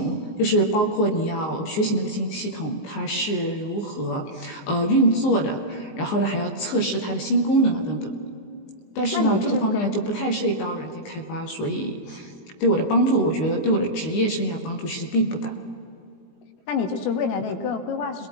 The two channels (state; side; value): late; right; 19 ms